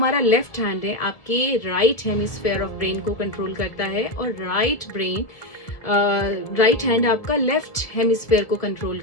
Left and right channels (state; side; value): late; right; 1.8 ms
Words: लेफ्ट हैंड है आपके राइट हेमिस्फेयर ऑफ ब्रेन को कंट्रोल करता है और राइट हैंड आपका लेफ्ट हेमिस्फेयर को कंट्रोल